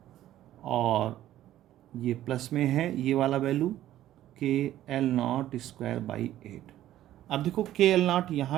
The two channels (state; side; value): quieter; left; 13.2 dB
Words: और ये प्लस में है ये वाला वैल्यू के L नॉट स्क्वायर बाई 8. अब देखो के एल नॉट